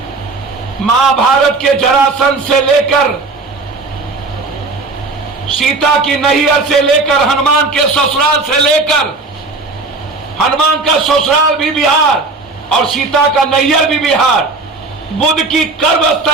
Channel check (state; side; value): quieter; left; 3.6 dB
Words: महाभारत के जरासंध से लेकर, सीता की नैहर से लेकर, हनुमान के ससुराल से लेकर, हनुमान का ससुराल भी बिहार और सीता का नैहर भी बिहार, बुद्ध की